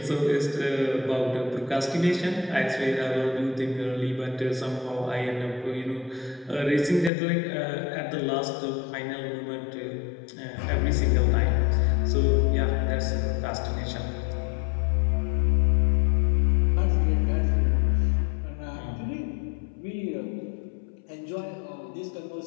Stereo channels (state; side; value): drops out; right; at 7.1 s